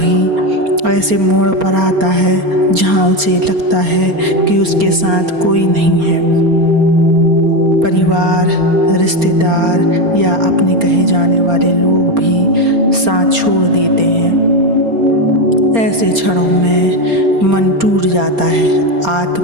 ऐसे मोड़ पर आता है जहाँ उसे लगता है कि उसके साथ कोई नहीं है। परिवार, रिश्तेदार या अपने कहे जाने वाले लोग भी साथ छोड़ देते हैं। ऐसे क्षणों में मन टूट जाता है,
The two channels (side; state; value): left; late; 4.3 ms